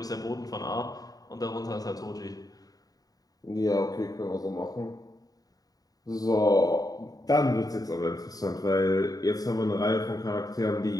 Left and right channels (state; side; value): late; right; 0.18 ms